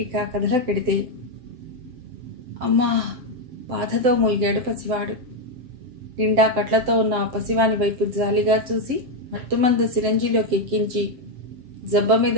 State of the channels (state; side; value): late; left; 7.7 ms